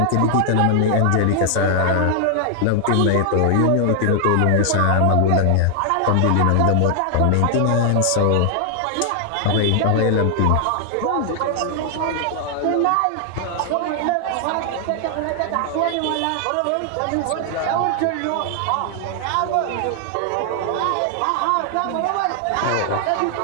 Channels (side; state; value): both; different; correlation 0.00